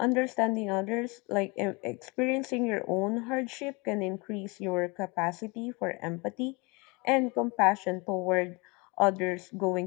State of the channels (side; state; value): right; quieter; 27.8 dB